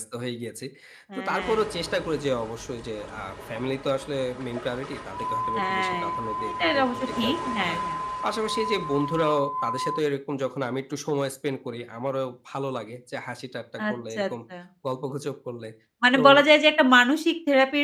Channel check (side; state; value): both; identical; correlation 1.00